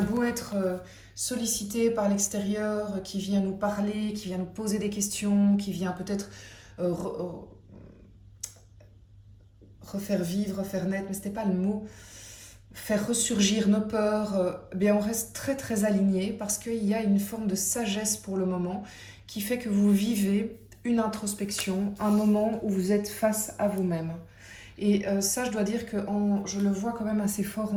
beau être sollicité par l'extérieur, qui vient nous parler, qui vient nous poser des questions, qui vient peut-être refaire vivre, refaire naître, mais c'était pas le mot, faire ressurgir nos peurs, bien on reste très très aligné parce qu'il y a une forme de sagesse pour le moment qui fait que vous vivez une introspection, un moment où vous êtes face à vous-même. Et ça, je dois dire que je le vois quand même assez fort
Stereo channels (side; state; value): both; identical; correlation 1.00